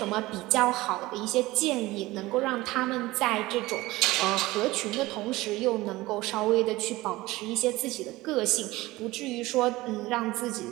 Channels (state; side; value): quieter; left; 19.2 dB